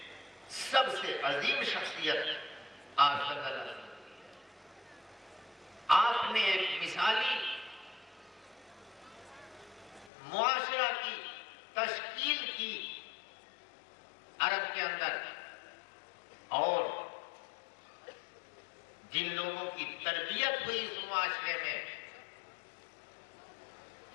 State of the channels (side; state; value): right; drops out; at 10.1 s